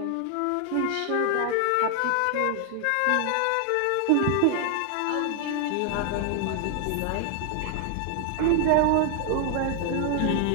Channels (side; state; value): both; different; correlation 0.00